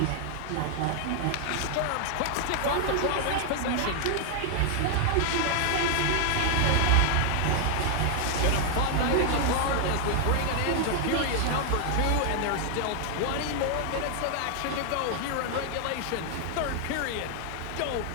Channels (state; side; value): different; both; correlation 0.00